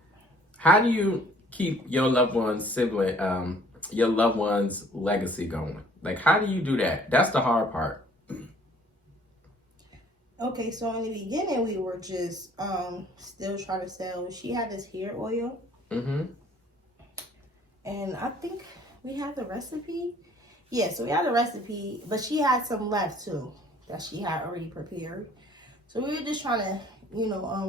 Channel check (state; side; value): normal; both; correlation 0.56